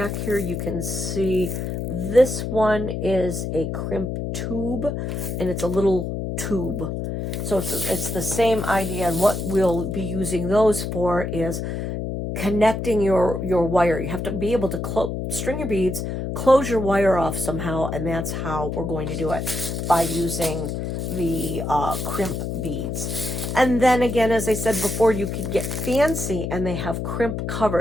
here, you can see this one is a crimp tube, and it's a little tube. So it's the same idea, and what we'll be using those for is connecting your wire. You have to be able to string your beads, close your wire off somehow, and that's how we're going to do it, by using the crimp beads. And then again, as I said before, you could get fancy, and they have crimp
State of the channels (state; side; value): noise; left; hum, 3 dB below the sound